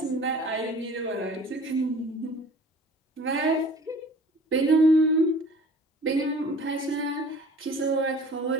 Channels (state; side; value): normal; both; correlation 0.47